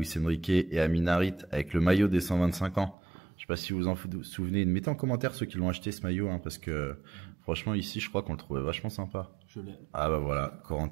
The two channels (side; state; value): left; drops out; at 3.0 s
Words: Enrique et Amin Harit avec le maillot des 125 ans. Je sais pas si vous en souvenez. Mettez en commentaire ceux qui l'ont acheté ce maillot, parce que franchement ici, je crois qu'on le trouvait vachement sympa. Je l'ai. Ah bah voilà,